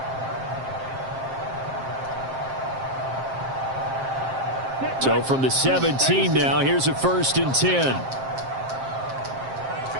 So from the 17 now, here's a 1st and 10.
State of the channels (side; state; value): left; late; 7.5 ms